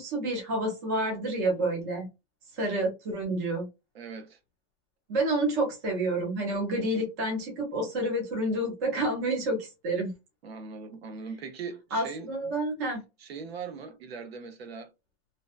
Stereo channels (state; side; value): normal; both; correlation 0.23